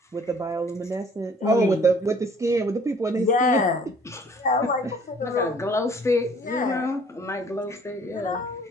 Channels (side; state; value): both; normal; correlation 0.56